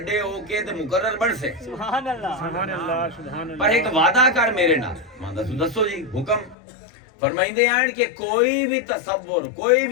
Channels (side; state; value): right; drops out; at 6.6 s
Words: ہو کے تے مقرر بن سے سبحان اللہ سبحان اللہ سبحان اللہ پر ایک وعدہ کر میرے نال میں دسو جی حکم فرمائندے ہیں کہ کوئی بھی تصور کوئی